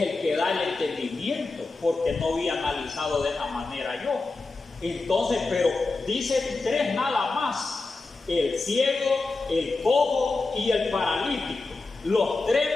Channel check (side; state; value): right; quieter; 3.6 dB